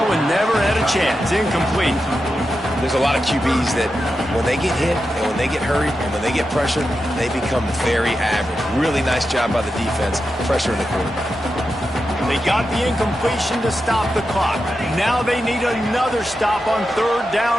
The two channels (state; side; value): normal; both; correlation 0.89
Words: one never had a chance. Incomplete. There's a lot of QBs that when they get hit and when they get hurried and when they get pressured, they become very average. Really nice job by the defense, pressuring the quarterback. They got the incompletion to stop the clock. Now they need another stop on 3rd